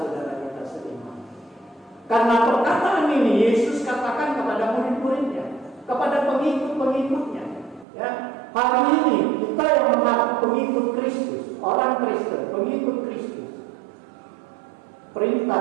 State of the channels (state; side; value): drops out; left; at 7.9 s